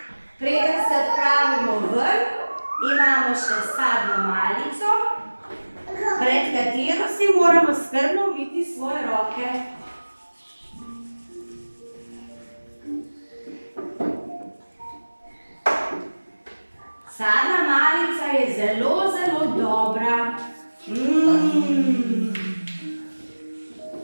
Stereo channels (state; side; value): inverted; both; correlation -1.00